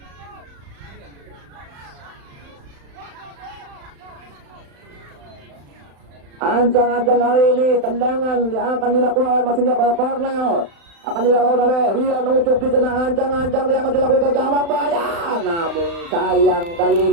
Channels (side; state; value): left; late; 35 ms